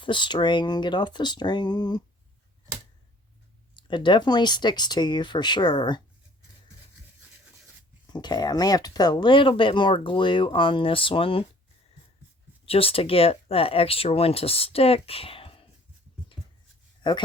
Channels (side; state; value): both; normal; correlation 0.54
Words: the string, get off the string. It definitely sticks to you for sure. Okay, I may have to put a little bit more glue on this one just to get that extra one to stick.